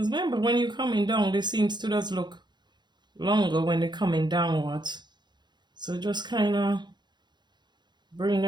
remember, when you're coming down, they seems to just look longer when they're coming downwards. So just kind of bring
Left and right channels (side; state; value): left; late; 0.21 ms